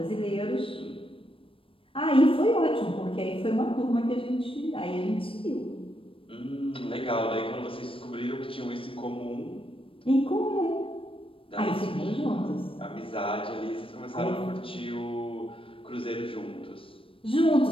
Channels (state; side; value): late; right; 0.26 ms